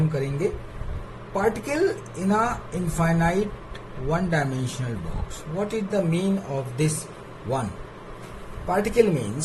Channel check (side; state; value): both; identical; correlation 1.00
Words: करेंगे। Particle in a infinite one dimensional box. What is the mean of this one? Particle